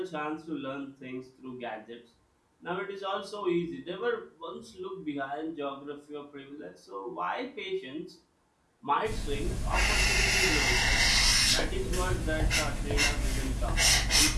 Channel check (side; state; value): both; identical; correlation 1.00